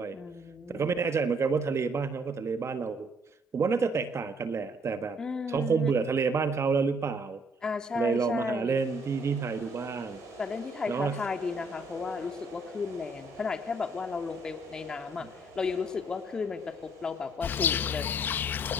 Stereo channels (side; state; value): both; normal; correlation 0.65